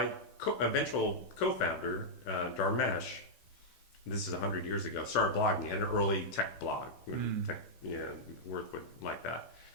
eventual co-founder, Dharmesh, this is 100 years ago, started blogging. He had an early tech blog. Tech, Worth would like that.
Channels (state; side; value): late; right; 15 ms